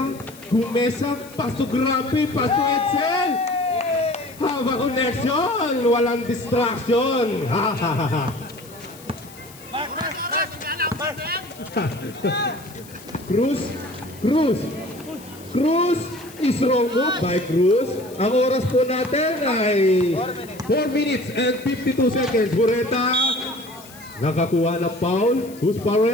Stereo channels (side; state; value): left; noise; hiss, 21 dB below the sound